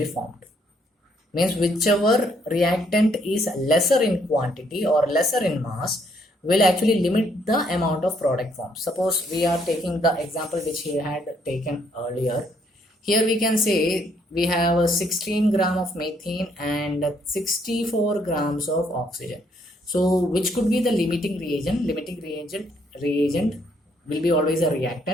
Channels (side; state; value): both; normal; correlation 0.69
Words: formed. Means whichever reactant is lesser in quantity or lesser in mass will actually limit the amount of product formed. Suppose we are taking the example which he had taken earlier. Here we can say we have 16 gram of methane and 64 grams of oxygen. So which could be the limiting reagent? Limiting reagent will be always a